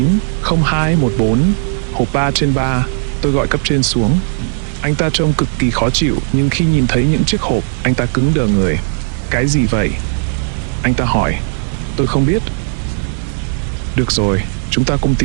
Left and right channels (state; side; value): silent; left; 70 dB below the other